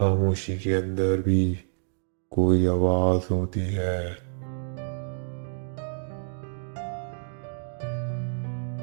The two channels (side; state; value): left; silent; digital silence